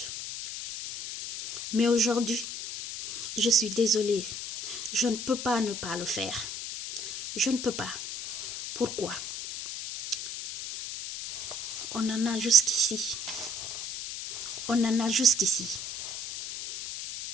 Mais aujourd'hui, je suis désolée. Je ne peux pas ne pas le faire. Je ne peux pas. Pourquoi? On en a jusqu'ici. On en a jusqu'ici.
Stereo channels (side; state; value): left; noise; hiss, 6 dB below the sound